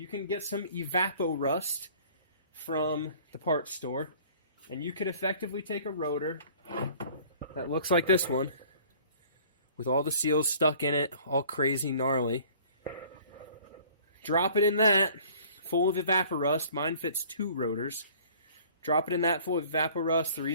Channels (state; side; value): inverted; both; correlation -0.51